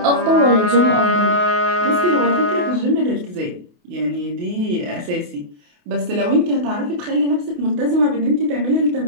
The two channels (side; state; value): left; late; 28 ms